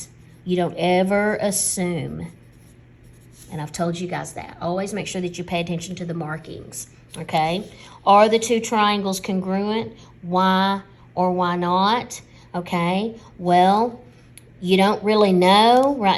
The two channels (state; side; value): identical; both; correlation 1.00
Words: You don't ever assume. And I've told you guys that. Always make sure that you pay attention to the markings, okay? Are the two triangles congruent? Why or why not? Okay, well, you don't really know.